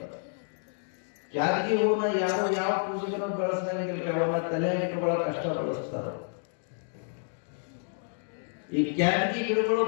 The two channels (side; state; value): right; silent; 58 dB below the other